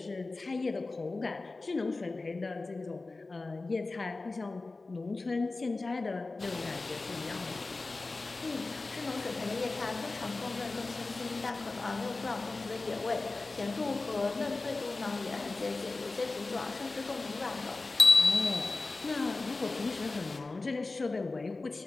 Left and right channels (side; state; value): right; quieter; 3.5 dB